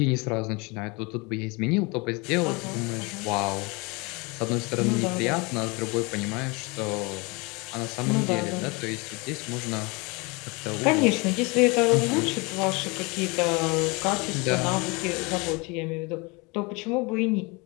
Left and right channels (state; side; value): quieter; right; 27.8 dB